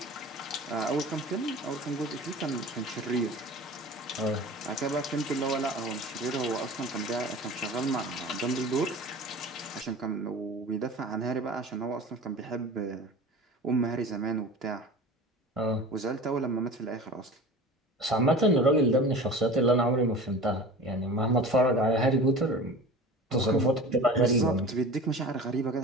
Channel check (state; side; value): normal; both; correlation 0.37